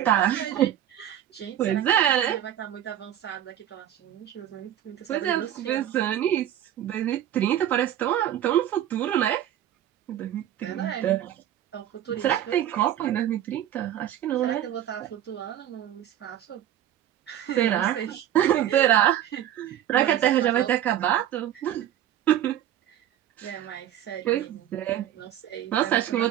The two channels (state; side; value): quieter; left; 11.4 dB